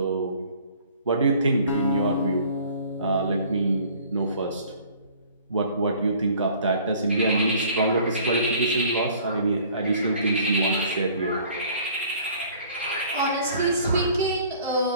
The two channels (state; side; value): inverted; both; correlation -0.53